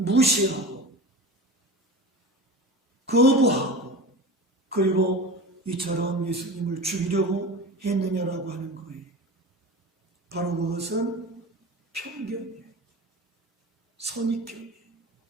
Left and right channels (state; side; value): normal; both; correlation 0.31